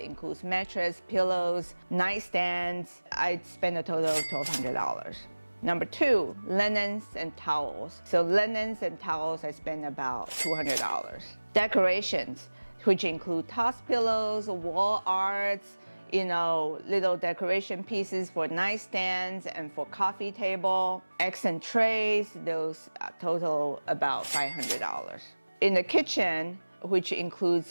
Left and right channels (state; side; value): inverted; both; correlation -1.00